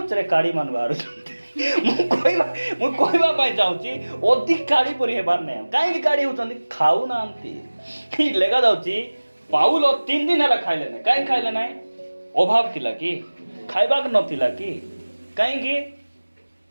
रे काड़ी मान बारू मु कहबा पाई जाउची अधिक काड़ी परी हेबार नै काई काड़ी होचंदी खाऊ नांती की लेगा जाउची पाउल 3 दिन हला खाइले नै काई खाइले नै अभाव थिला कि खाइबाक नथिला कि काई कि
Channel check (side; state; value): both; inverted; correlation -1.00